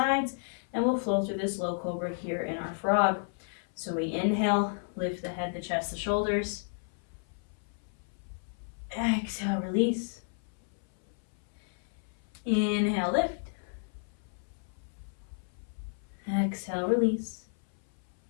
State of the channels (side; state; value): right; silent; 56 dB below the other